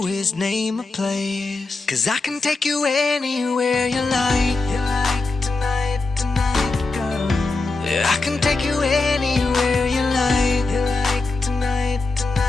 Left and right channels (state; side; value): quieter; right; 3.6 dB